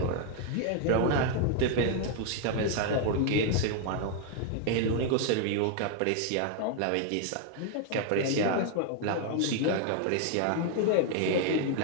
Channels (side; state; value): both; different; correlation 0.00